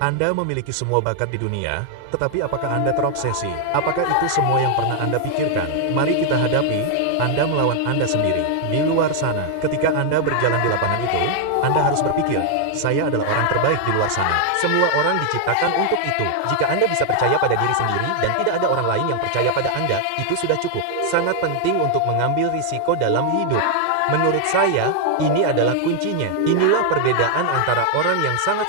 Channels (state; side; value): different; both; correlation 0.00